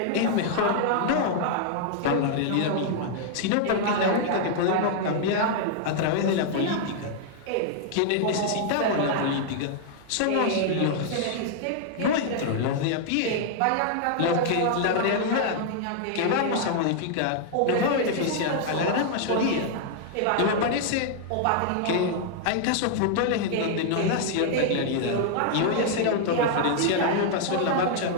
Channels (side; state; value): both; different; correlation -0.01